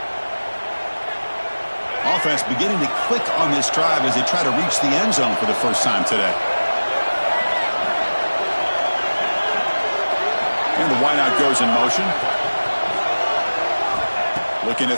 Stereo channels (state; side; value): inverted; both; correlation -1.00